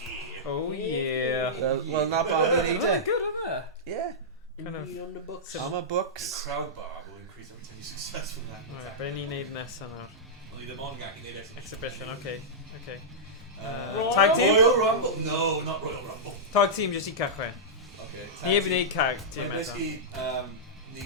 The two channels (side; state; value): both; normal; correlation -0.12